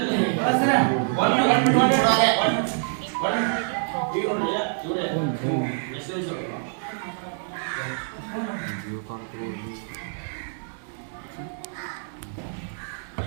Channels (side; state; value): left; silent; digital silence